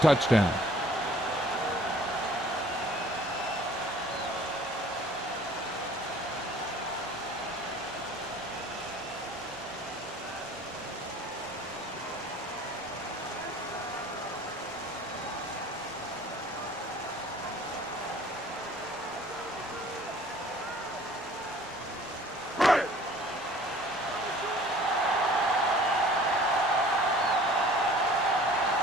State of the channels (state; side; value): normal; both; correlation 0.51